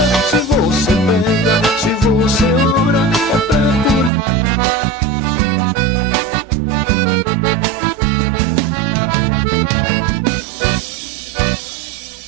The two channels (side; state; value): left; drops out; at 4.1 s